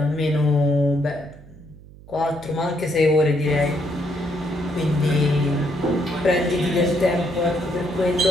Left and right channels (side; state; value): right; noise; hum, 21 dB below the sound